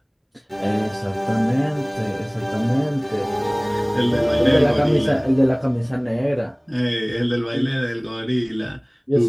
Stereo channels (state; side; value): identical; both; correlation 1.00